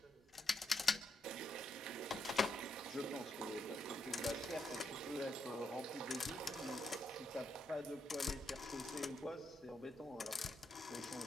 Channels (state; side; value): normal; both; correlation 0.80